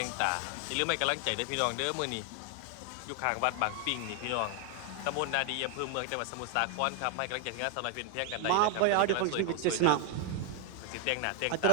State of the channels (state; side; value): different; both; correlation 0.00